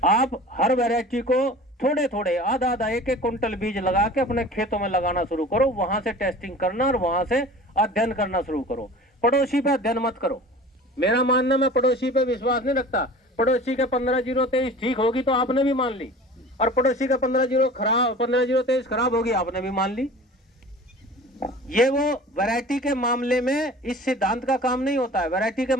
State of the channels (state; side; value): normal; both; correlation 0.41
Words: आप हर वैरायटी को थोड़े थोड़े आधा आधा एक एक कुंटल बीज लगा के अपने खेतों में लगाना शुरू करो। वहां से टेस्टिंग करना और वहां से अध्ययन करना शुरू करो। पड़ोसी पे अध्ययन मत करो। मेरा मानना, मैं पड़ोसी पे विश्वास नहीं रखता। पड़ोसी के 15-0-23 ठीक होगी तो आपने भी मान ली, और पड़ोसी का 15-0-23 खराब होगी आपने भी मान ली। ये वो वैरायटी के मामले में इस सिद्धांत का काम नहीं होता है। वैरायटी के